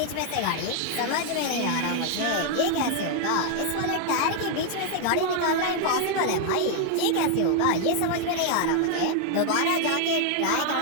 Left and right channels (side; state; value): both; different; correlation 0.00